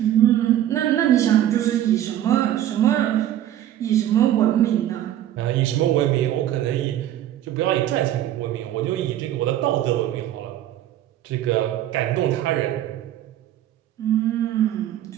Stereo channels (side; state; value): left; quieter; 12.1 dB